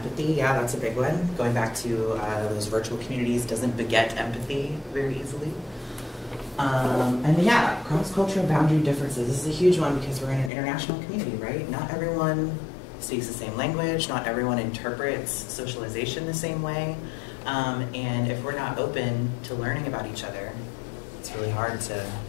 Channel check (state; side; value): drops out; right; at 10.5 s